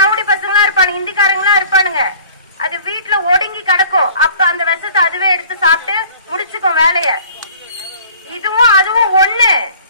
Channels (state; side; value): inverted; both; correlation -0.48